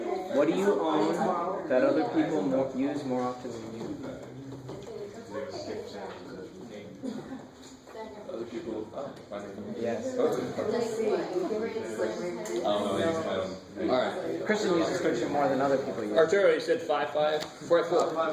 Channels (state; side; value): identical; both; correlation 1.00